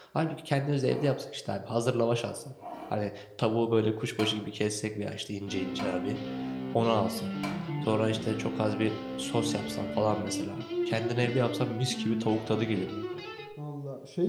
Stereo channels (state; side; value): identical; both; correlation 1.00